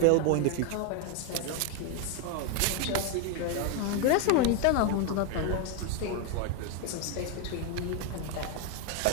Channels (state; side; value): different; both; correlation 0.01